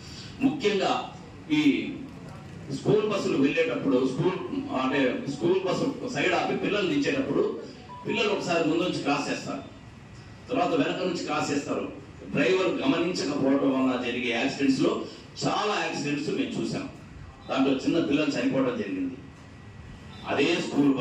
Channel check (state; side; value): identical; both; correlation 1.00